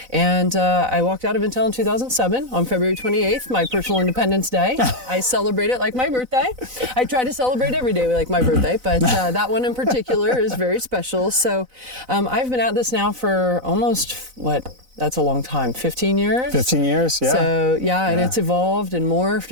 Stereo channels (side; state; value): left; late; 4.0 ms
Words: And I walked out of Intel in 2007 on February 28th, my personal Independence Day. I celebrate it like my birthday. I try to celebrate every day like my birthday, but that one in particular is very special. So I've been at this now for almost, that's a long time, 15 years? 15 years, yeah. So, and it's evolved and morphed